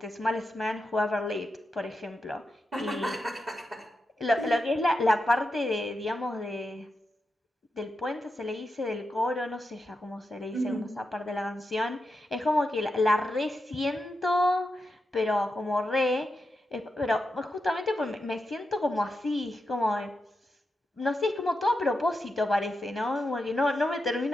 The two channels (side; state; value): both; normal; correlation 0.88